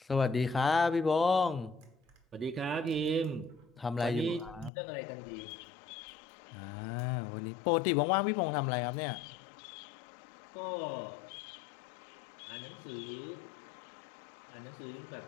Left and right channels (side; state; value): right; drops out; at 4.7 s